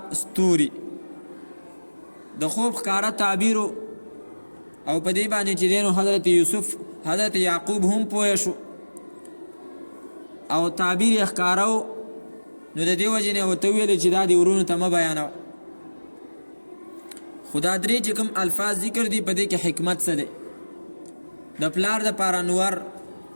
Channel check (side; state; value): both; inverted; correlation -1.00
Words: ستوري. د خوب ښکاره تعبیرو او په دې باندې چې دینو حضرت یوسف حضرت یعقوب هم پوه شو او تعبیر یې ښکارو، نو د دې وجې نه ورته ویل چې دا د ورونو ته مه بیانوه. خدا درې چې کوم الفاظ ذکر دي په دې کې حکمت څه دی؟ د پلار د پاره نور،